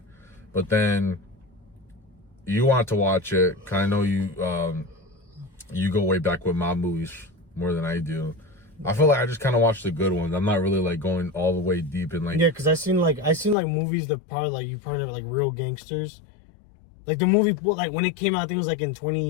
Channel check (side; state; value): right; drops out; at 13.6 s